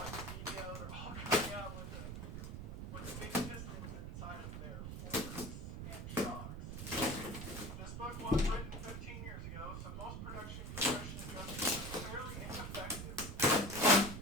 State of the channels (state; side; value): noise; right; rumble, 6 dB below the sound